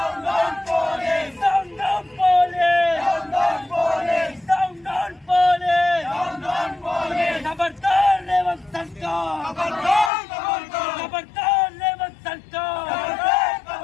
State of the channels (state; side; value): drops out; right; at 10.1 s